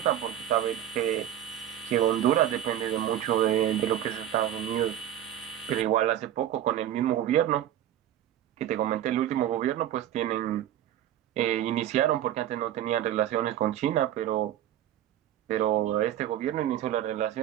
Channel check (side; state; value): left; quieter; 11.6 dB